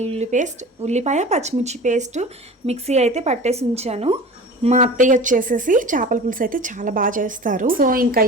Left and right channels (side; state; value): both; normal; correlation 0.37